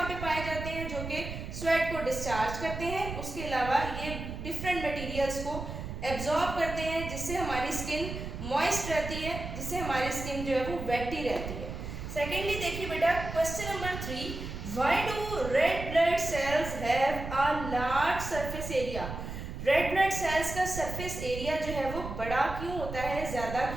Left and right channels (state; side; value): noise; right; rumble, 7 dB below the sound